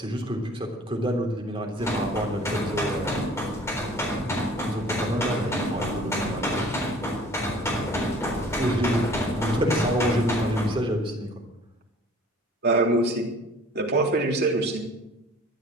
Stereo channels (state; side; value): normal; both; correlation 0.50